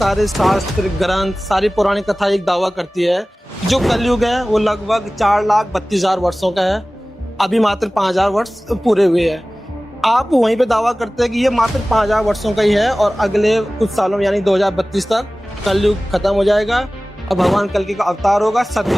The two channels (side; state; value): both; normal; correlation 0.98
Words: शास्त्र ग्रंथ सारी पौराणिक कथा एक दावा करती है जो कलयुग है वो लगभग 4,32,000 वर्षों का है। अभी मात्र 5,000 वर्ष पूरे हुए हैं। आप वहीं पे दावा करते हैं कि ये मात्र 5,000 वर्षों का ही है और अगले कुछ सालों में यानी 2032 तक कलयुग खत्म हो जाएगा और भगवान कल्कि का अवतार होगा,